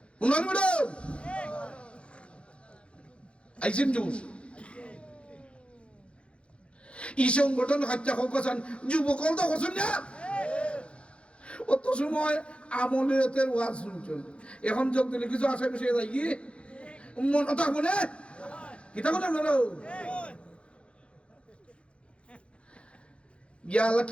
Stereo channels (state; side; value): late; right; 0.059 ms